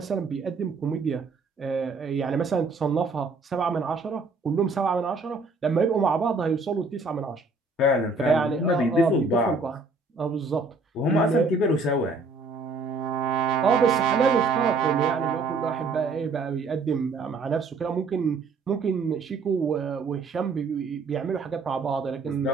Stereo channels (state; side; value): quieter; left; 3.8 dB